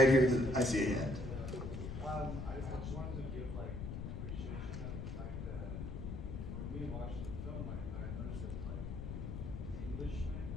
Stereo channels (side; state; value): left; noise; rumble, 5 dB below the sound